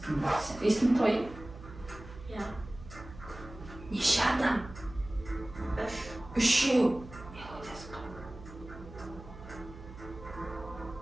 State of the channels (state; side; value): noise; right; hum, 15 dB below the sound